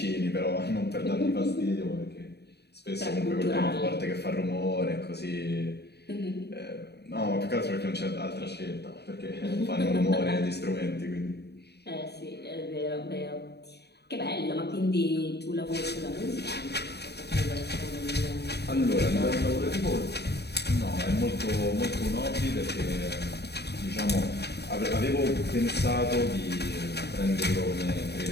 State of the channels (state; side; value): late; right; 0.48 ms